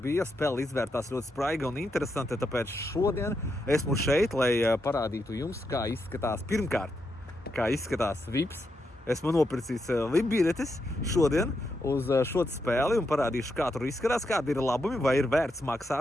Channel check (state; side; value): normal; both; correlation 0.83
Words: spēle izvērtās ļoti spraiga un interesanta, tāpēc šodien esmu šeit, lai parādītu jums, kā izskatās pirmkārt, kā izskatās VIPs. Esmu nopircis VIP biļetes šodien uz šo spēli un parādīšu, kā tur izskatās, kādi ir labumi, vai ir vērts